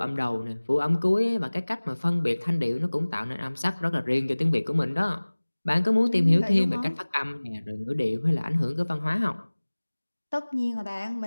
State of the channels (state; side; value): inverted; both; correlation -1.00